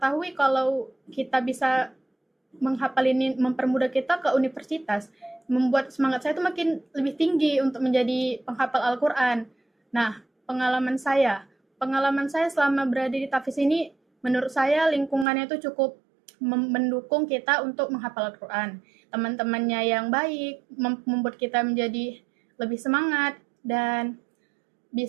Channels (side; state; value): left; drops out; at 15.2 s